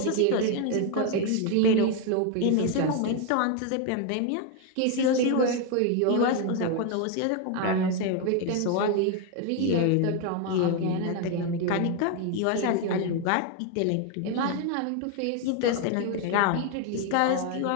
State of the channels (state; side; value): different; both; correlation 0.01